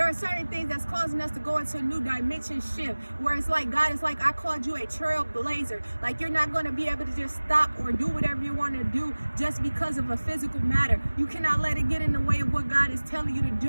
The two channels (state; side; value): inverted; both; correlation -1.00